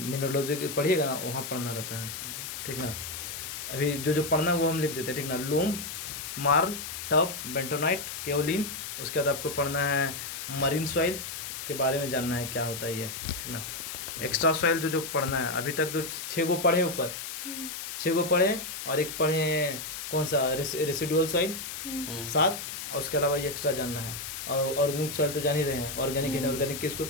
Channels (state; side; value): noise; left; hiss, 7 dB below the sound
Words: पढ़िएगा ना, वहाँ पढ़ना रहता है, ठीक ना? अभी जो जो पढ़ना है वो हम लिख देते हैं, ठीक ना? लोम, मार्ल, टफ, बेंटोनाइट, केओलिन। उसके बाद आपको पढ़ना है मरीन सॉइल के बारे में जानना है क्या होता है ये, ठीक ना? एक्स्ट्रा सॉइल जो जो पढ़ना है, अभी तक जो 6 गो पढ़े ऊपर, 6 गो पढ़े, और एक पढ़े कौन सा रेसिडुअल सॉइल 7, और उसके अलावा ये एक्स्ट्रा जानना है। और ऑर्गेनिक सॉइल तो जान ही रहे हैं, ऑर्गेनिक इनऑर्गेनिक किसको